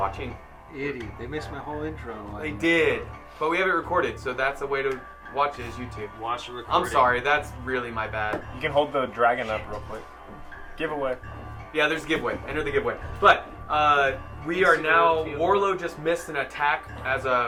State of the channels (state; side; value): identical; both; correlation 1.00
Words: Idiot, they missed my whole intro. They did. But we have it recorded, so that's a way to watch it is YouTube. Watch the recording. I'm sorry, that's really my bad. You can hold the dragon up real quick. Giveaway. Yeah, there's a giveaway. Enter the giveaway. But we are now. Warlow just missed an attack as